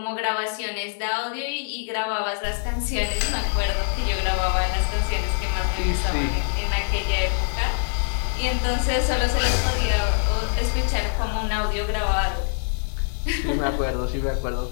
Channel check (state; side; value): silent; right; digital silence